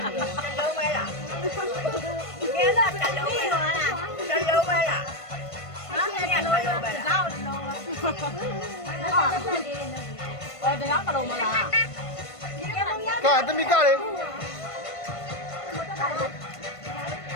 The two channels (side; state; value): right; late; 1.5 ms